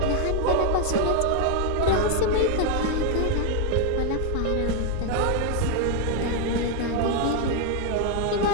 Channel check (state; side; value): different; both; correlation 0.00